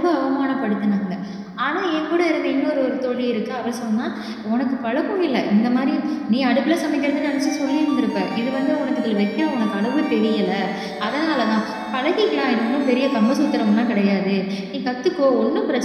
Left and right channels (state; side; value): identical; both; correlation 1.00